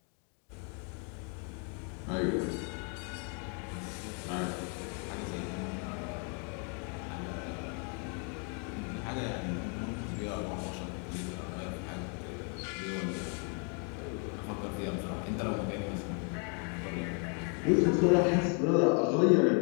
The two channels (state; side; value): quieter; right; 38.7 dB